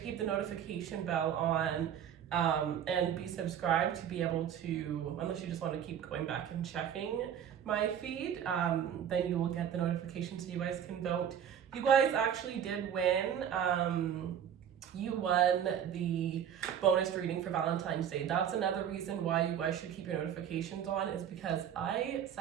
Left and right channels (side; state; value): left; quieter; 9.1 dB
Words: keep the notification bell on and be subscribed to be able to, unless you just want to keep going back and checking my feed, then you will get the notification so you guys can vote. You guys actually did win. You won the bonus reading for Valentine's Day. That's another reason why you guys should keep your notifications on, is because I